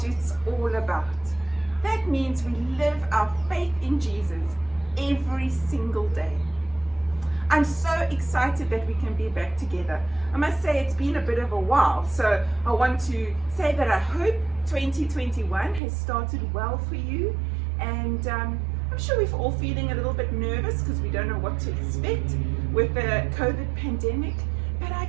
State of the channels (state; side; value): drops out; left; at 15.8 s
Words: it's all about. That means we live our faith in Jesus every single day. I'm so excited that we can be back together. I must say it's been a bit of a while, so I want to say that I hope 2021 has started well for you, and I'm sure we're all feeling a little bit nervous because we don't know what to expect with the COVID pandemic, but I